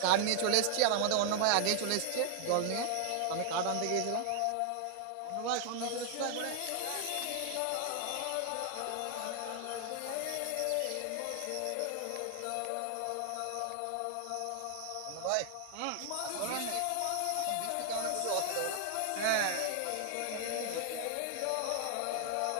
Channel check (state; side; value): different; both; correlation 0.00